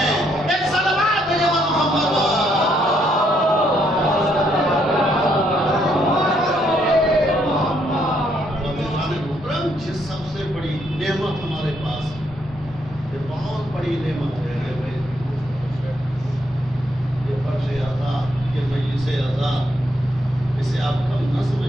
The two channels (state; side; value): normal; both; correlation 0.73